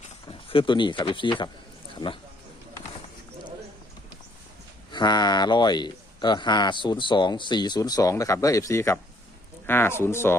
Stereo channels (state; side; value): normal; both; correlation 0.64